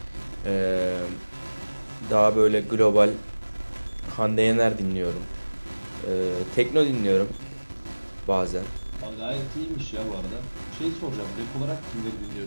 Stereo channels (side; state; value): both; inverted; correlation -1.00